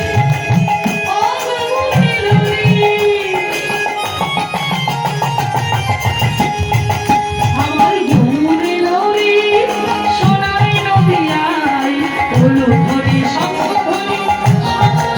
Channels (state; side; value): identical; both; correlation 1.00